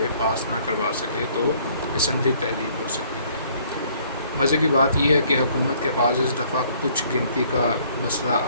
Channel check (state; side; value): inverted; both; correlation -0.61